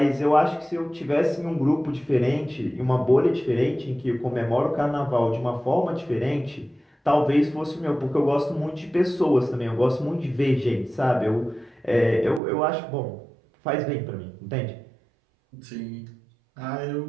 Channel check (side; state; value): left; drops out; at 12.4 s